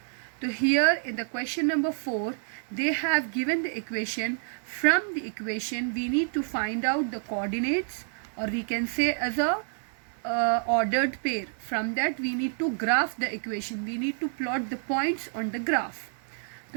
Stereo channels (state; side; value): silent; left; digital silence